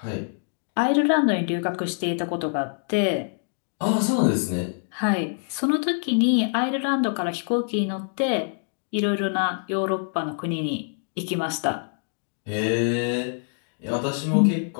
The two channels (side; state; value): right; silent; digital silence